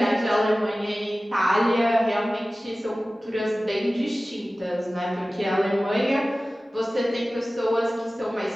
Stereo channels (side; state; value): both; normal; correlation 0.97